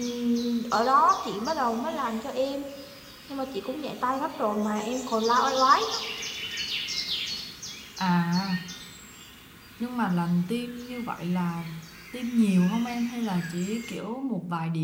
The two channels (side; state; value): both; identical; correlation 1.00